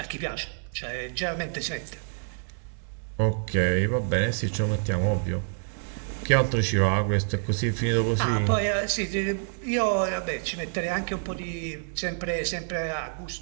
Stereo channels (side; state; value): left; silent; 60 dB below the other